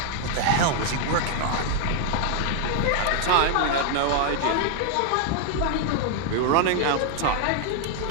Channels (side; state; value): both; different; correlation 0.00